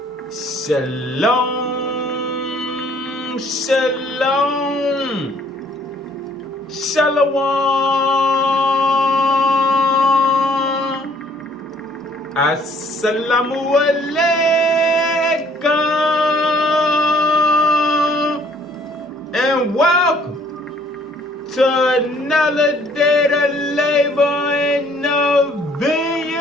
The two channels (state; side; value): normal; both; correlation 0.60